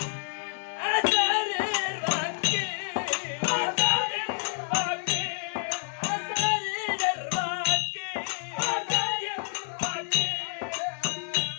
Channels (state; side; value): silent; right; digital silence